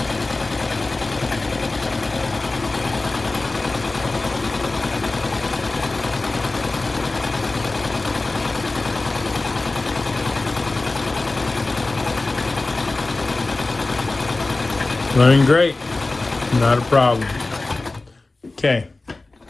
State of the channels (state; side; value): quieter; right; 3.2 dB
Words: Running great. Not a problem. Okay.